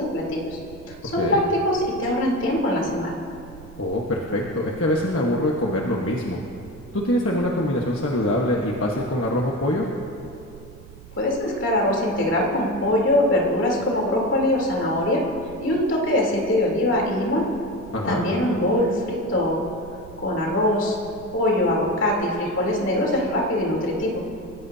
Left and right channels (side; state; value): right; noise; rumble, 18 dB below the sound